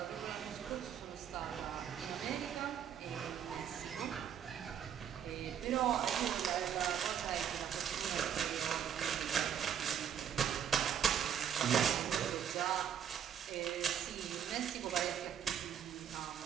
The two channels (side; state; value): left; quieter; 8.9 dB